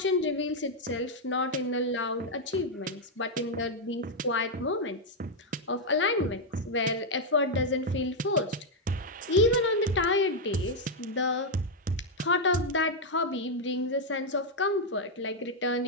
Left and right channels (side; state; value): both; normal; correlation 0.00